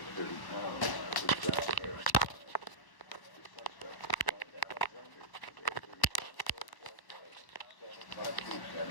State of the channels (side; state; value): right; late; 1.1 ms